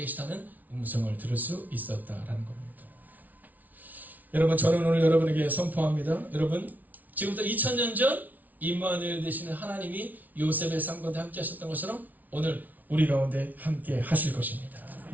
계시다는 음성을 들을 수 있었다라는 겁니다. 여러분 저는 오늘 여러분에게 선포합니다. 여러분 지금부터 2000년 전 임마누엘 되시는 하나님이 요셉의 삶 가운데 함께 하셨던 것처럼 오늘 우리 가운데 함께 하실 것입니다.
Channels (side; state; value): left; late; 0.077 ms